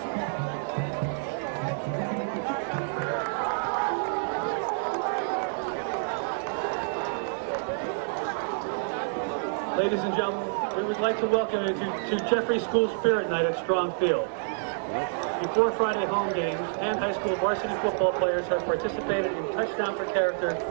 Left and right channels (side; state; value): left; silent; digital silence